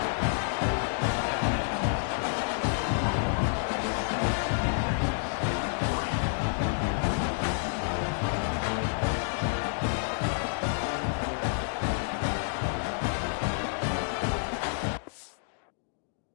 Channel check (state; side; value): silent; right; digital silence